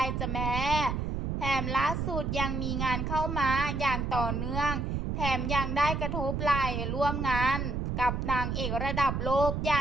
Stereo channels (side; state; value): right; noise; rumble, 1 dB below the sound